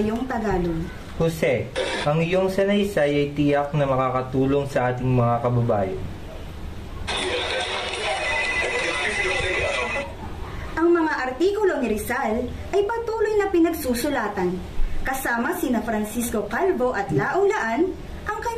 Tagalog. Jose, ang iyong sanaysay ay tiyak na makakatulong sa ating mga kababayan. Ang mga artikulo ni Rizal ay patuloy na pinagsusulatan. Kasama sina Francisco Calvo at Laong Laan, ang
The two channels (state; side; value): identical; both; correlation 1.00